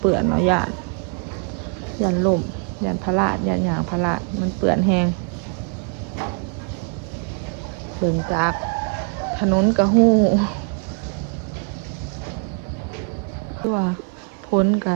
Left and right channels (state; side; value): quieter; left; 32.3 dB